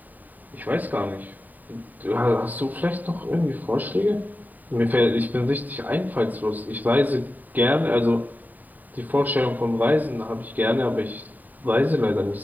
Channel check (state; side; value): late; left; 0.085 ms